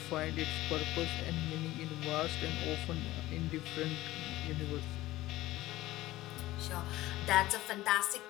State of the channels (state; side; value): quieter; right; 16.9 dB